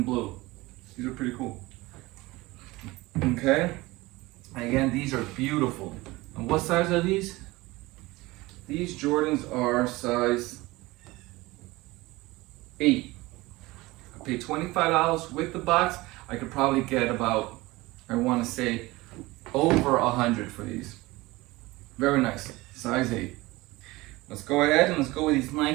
blue. These are pretty cool. Okay. Again, these are beautiful. And what size are these? These Jordans are size 8. I paid $25 with the box. I could probably get about, I want to say, over 100 for these. Very nice, size 8. Let's go ahead and let's go with these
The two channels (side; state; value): left; quieter; 20.8 dB